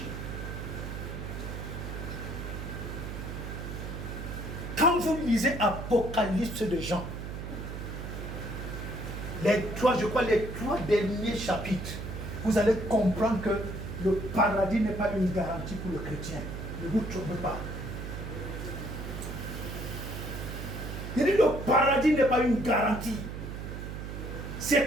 Quand vous lisez Apocalypse de Jean, les trois derniers chapitres, vous allez comprendre que le paradis n'est pas une garantie pour le chrétien. Ne vous trompez pas. Il dit le paradis n'est pas une garantie. C'est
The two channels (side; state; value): right; noise; hum, 7 dB below the sound